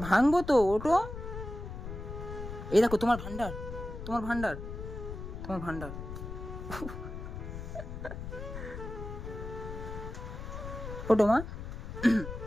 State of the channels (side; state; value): left; noise; rumble, 8 dB below the sound